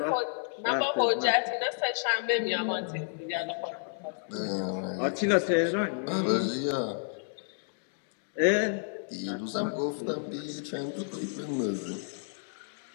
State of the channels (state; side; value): silent; right; 57 dB below the other